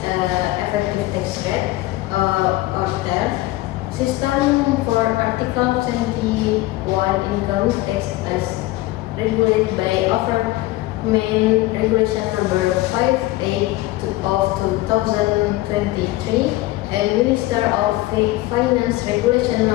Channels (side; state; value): right; quieter; 18.0 dB